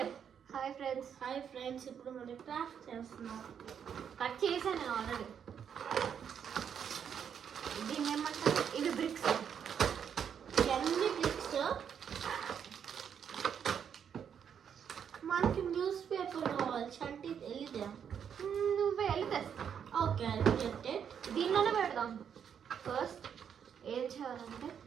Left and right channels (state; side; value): quieter; left; 8.0 dB